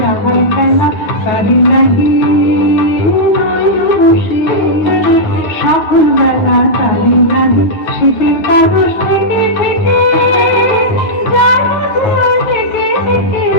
যাহার খেলা তারি নাকি নয় বসে সকল বেলা তারি নাকি। শীতের কাগজ থেকে থেকে যায় মধুর থেকে থেকে,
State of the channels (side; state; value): right; late; 9.8 ms